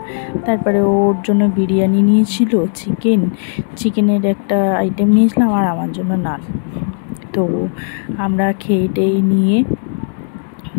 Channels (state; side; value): silent; right; digital silence